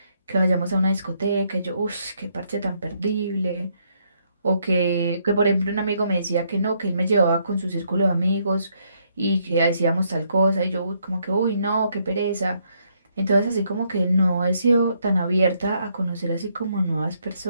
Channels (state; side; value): inverted; both; correlation -0.73